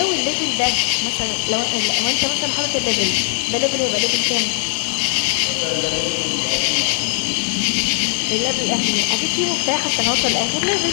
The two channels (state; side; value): silent; right; digital silence